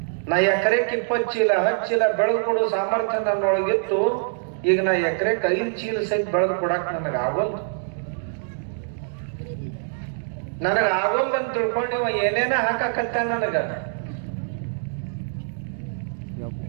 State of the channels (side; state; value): left; silent; digital silence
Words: ನಾ ಎಕರೆಕ್ 20 ಚೀಲ 10 ಚೀಲ ಬೆಳೆದು ಕೊಡೋ ಸಾಮರ್ಥ್ಯ ನನ್ನೊಳಗಿತ್ತು. ಈಗ ನಾ ಎಕರೆಕ್ 5 ಚೀಲ ಸಹಿತ ಬೆಳೆದು ಕೊಡಾಕ್ ನನಗಾಗೋಲ್ದು. ನನಗಾಗೋಲ್ದು ಅಂತ ತಿಳ್ಕೊಂಡು ಇವ ಏನೇನ ಹಾಕಾಕತ್ತ ನನಗ.